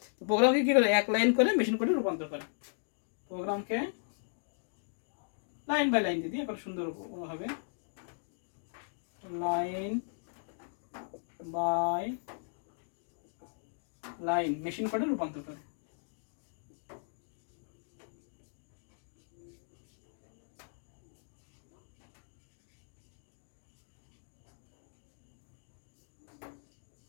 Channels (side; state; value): right; silent; digital silence